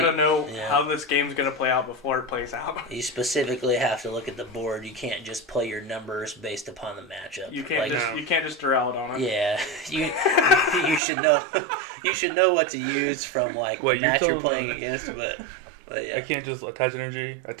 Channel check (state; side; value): drops out; left; at 11.0 s